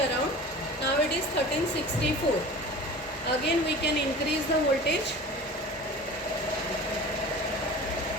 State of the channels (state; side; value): normal; both; correlation 0.38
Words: around, now it is 1364. Again we can increase the voltage.